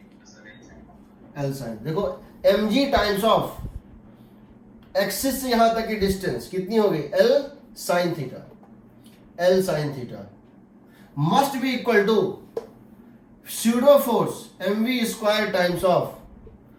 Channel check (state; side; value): identical; both; correlation 1.00